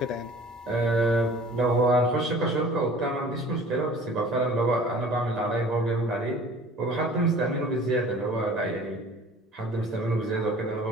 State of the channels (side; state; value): both; normal; correlation 0.47